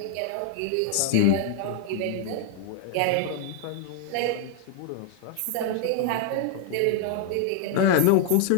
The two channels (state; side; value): different; both; correlation 0.00